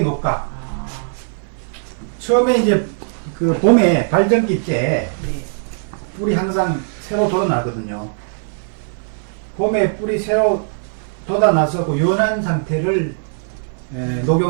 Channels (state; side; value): silent; left; 57 dB below the other